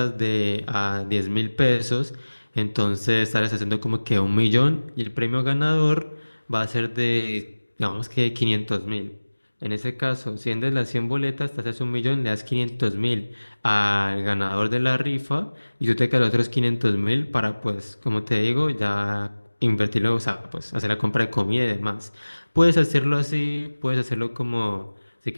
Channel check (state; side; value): inverted; both; correlation -1.00